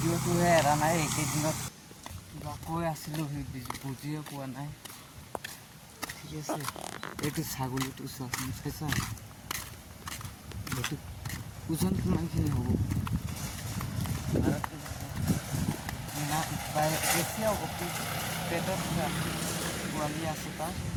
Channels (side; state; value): both; identical; correlation 1.00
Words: এৰা নাই। এইকেইদিনত কিবা কৈ আছিলোঁ, সেই বুজিয়ে পোৱা নাই। ঠিক আছে, এইটো ছাগলীটো চোৱাচোন, চাইছা এইটো ওজন কিমানখিনি হ'ব। বেছি হ'ব, পেটত পোৱালি আছে তাৰ।